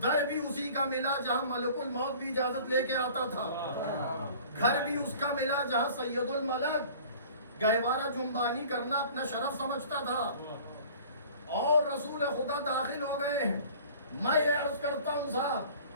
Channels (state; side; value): inverted; both; correlation -0.47